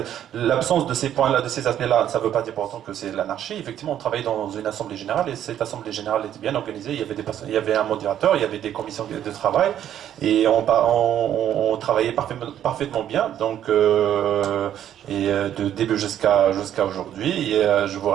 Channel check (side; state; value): left; quieter; 10.7 dB